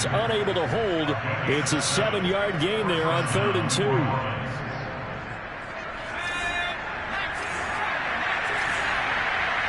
unable to hold. It's a 7-yard gain there on 3rd and 2.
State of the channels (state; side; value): identical; both; correlation 1.00